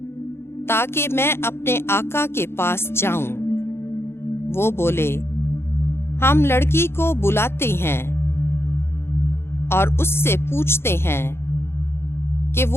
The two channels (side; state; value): right; late; 0.12 ms